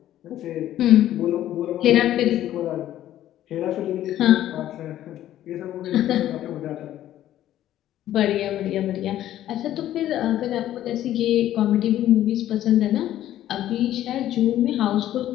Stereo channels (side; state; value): right; quieter; 12.7 dB